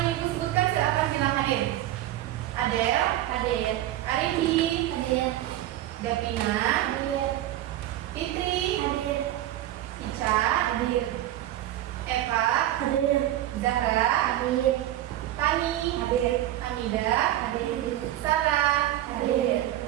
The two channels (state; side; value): quieter; left; 13.7 dB